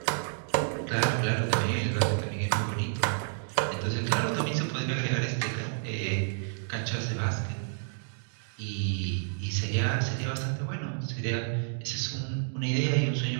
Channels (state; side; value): silent; left; digital silence